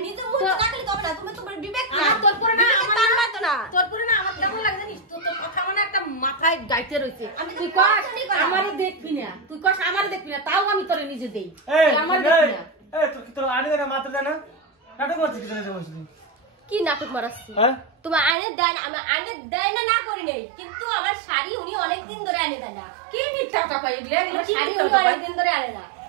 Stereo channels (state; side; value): drops out; left; at 18.4 s